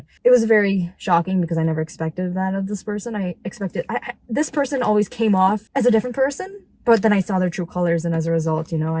it was very shocking because I never expected that of this person. I expected this person always came off as a different person, but then I saw their true colors, and as a result,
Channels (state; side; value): identical; both; correlation 1.00